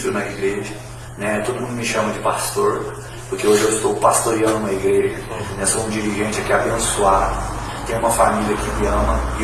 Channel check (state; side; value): identical; both; correlation 1.00